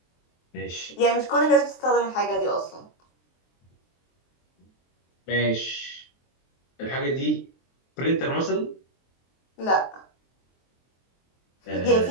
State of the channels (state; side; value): late; right; 23 ms